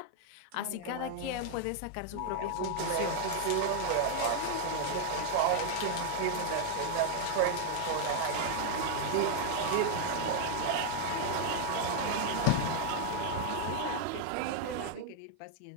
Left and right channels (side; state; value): both; different; correlation 0.00